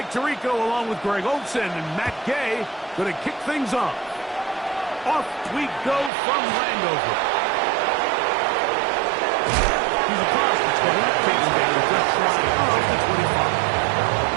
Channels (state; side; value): drops out; left; at 6.1 s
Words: Tirico along with Greg Olson and Matt Gay going to kick things off. Off we go from Landover. He's across the 20, taking down the left side of the 25.